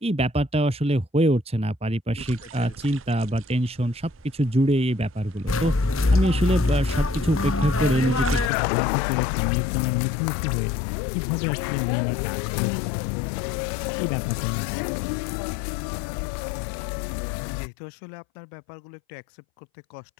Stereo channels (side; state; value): right; drops out; at 8.5 s